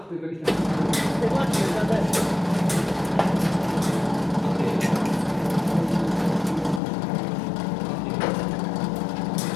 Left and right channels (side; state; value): right; drops out; at 6.8 s